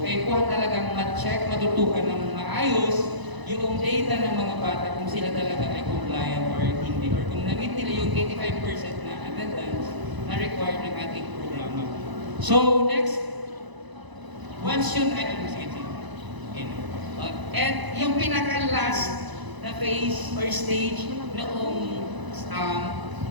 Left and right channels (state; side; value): late; left; 1.0 ms